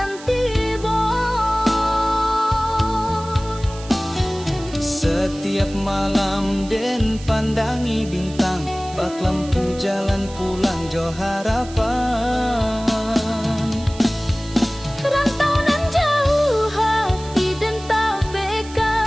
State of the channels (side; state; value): right; noise; hiss, 18 dB below the sound